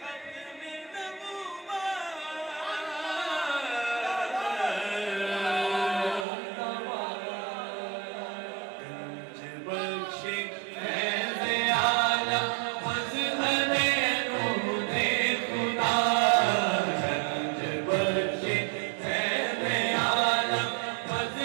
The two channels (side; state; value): left; drops out; at 6.2 s